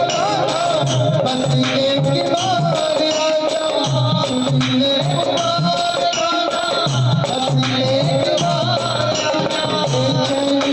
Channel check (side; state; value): both; identical; correlation 1.00